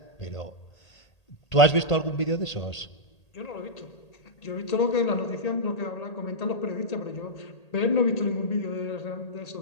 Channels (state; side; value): late; right; 1.8 ms